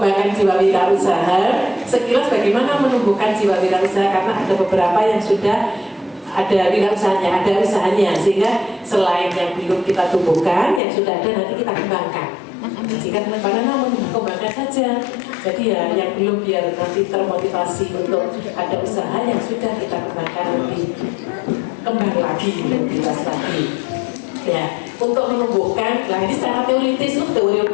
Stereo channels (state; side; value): drops out; right; at 10.8 s